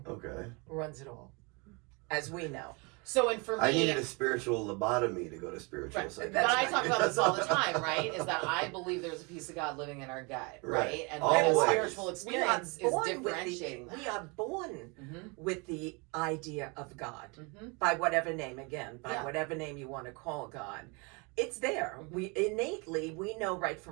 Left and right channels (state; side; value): quieter; left; 30.1 dB